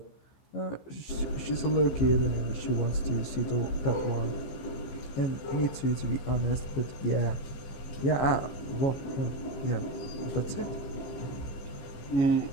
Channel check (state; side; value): late; right; 15 ms